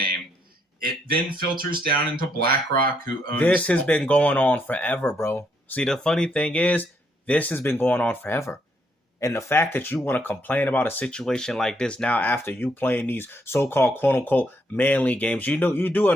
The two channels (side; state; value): both; normal; correlation 0.74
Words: It then filters down into BlackRock, who owns... This has been going on forever, bro. See, the funny thing is, this has been going on forever. And the fact that you want to complain about a situation like this now after you playing these so-called quote-unquote manly games, you know, you do